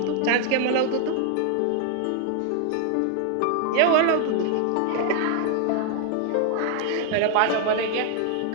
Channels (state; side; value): different; both; correlation 0.00